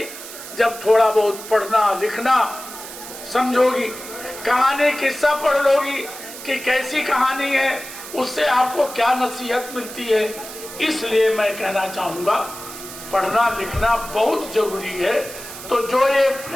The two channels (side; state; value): right; noise; hiss, 12 dB below the sound